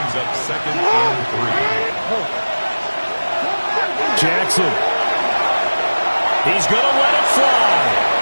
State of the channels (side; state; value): both; inverted; correlation -1.00